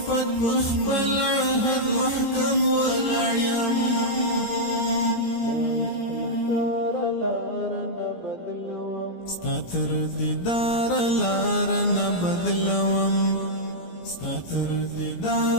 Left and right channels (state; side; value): late; right; 17 ms